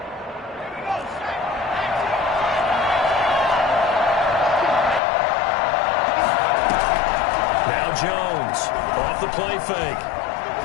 Jones off the play fake.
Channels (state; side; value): drops out; right; at 5.0 s